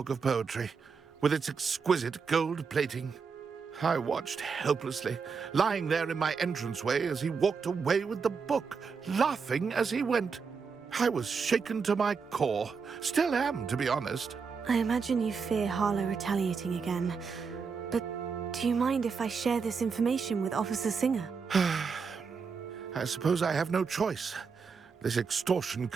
of poetry, with its exquisite gold plating. I watched helplessly, lying there in my entranceway as he walked away with the book, laughing as he went. I was shaken to my core. Still am, to be honest. I imagine you fear Harlow retaliating again. But do you mind if I share this information with Officer Singer? I suppose I have no choice. This extortion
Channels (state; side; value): quieter; left; 5.5 dB